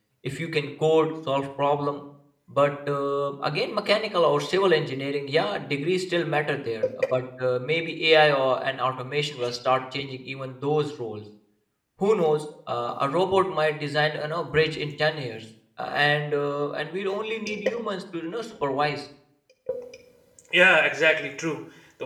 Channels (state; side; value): identical; both; correlation 1.00